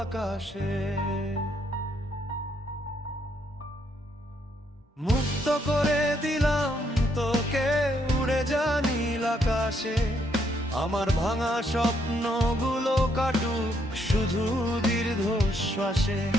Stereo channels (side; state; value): both; normal; correlation 0.73